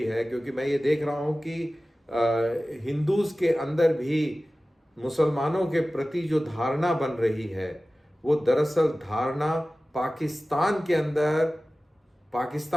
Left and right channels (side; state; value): both; normal; correlation 0.96